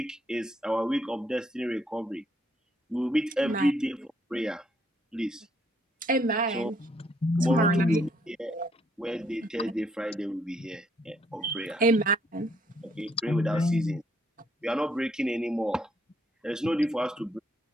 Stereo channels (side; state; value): both; normal; correlation 0.70